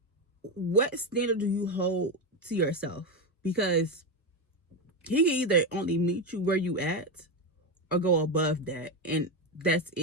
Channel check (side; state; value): both; normal; correlation 0.12